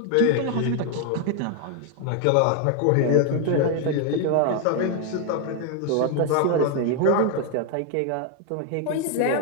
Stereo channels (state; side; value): different; both; correlation 0.00